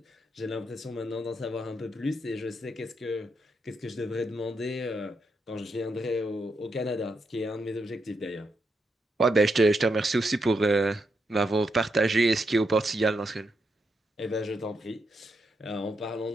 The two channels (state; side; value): normal; both; correlation 0.82